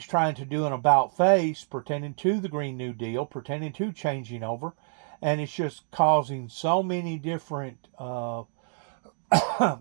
trying to do an about face pertaining to the Green New Deal, pertaining to changing over, and it's just causing so many different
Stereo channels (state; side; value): silent; left; digital silence